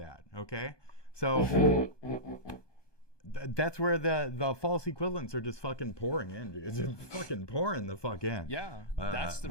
okay? So that's where the false equivalents are just fucking pouring in. It's just fucking pouring the fuck in. Yeah, that's the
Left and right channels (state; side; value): late; right; 1.2 ms